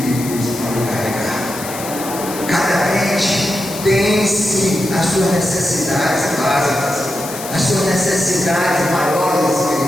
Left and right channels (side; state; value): left; noise; hiss, 10 dB below the sound